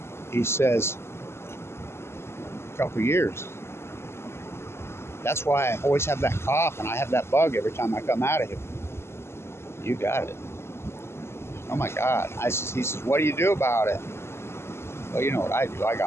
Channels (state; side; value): late; right; 0.12 ms